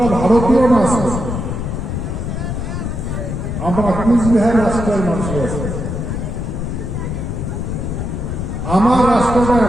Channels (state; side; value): noise; left; rumble, 3 dB below the sound